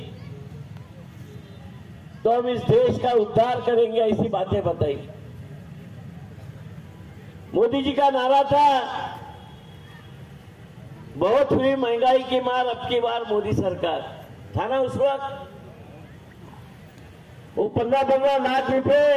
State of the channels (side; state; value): both; identical; correlation 1.00